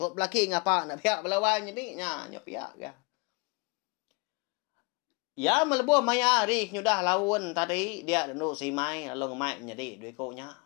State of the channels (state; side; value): quieter; right; 29.1 dB